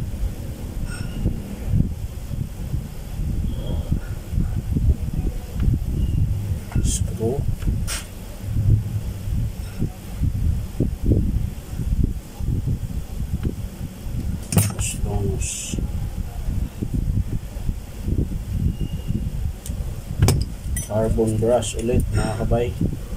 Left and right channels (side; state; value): both; identical; correlation 1.00